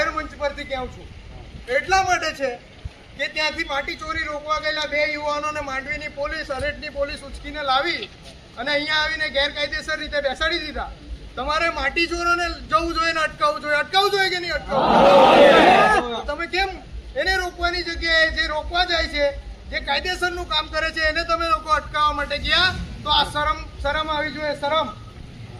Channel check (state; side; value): identical; both; correlation 1.00